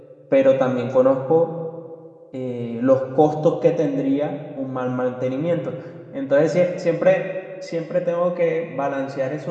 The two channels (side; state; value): both; identical; correlation 1.00